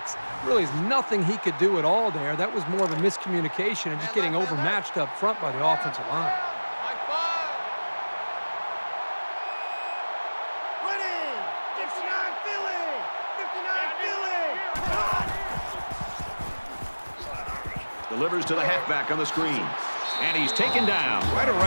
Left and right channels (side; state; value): both; inverted; correlation -1.00